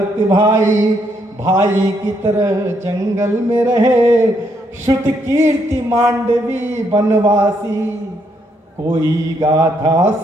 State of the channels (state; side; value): normal; both; correlation 0.74